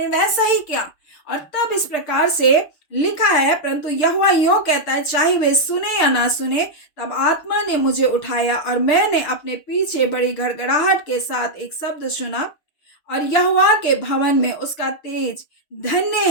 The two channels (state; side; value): late; right; 6.6 ms